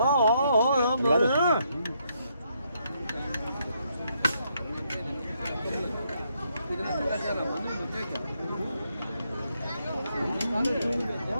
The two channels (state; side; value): inverted; both; correlation -0.76